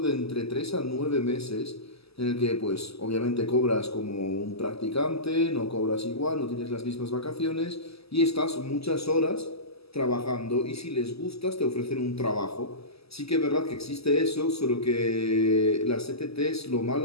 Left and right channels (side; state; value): right; late; 0.78 ms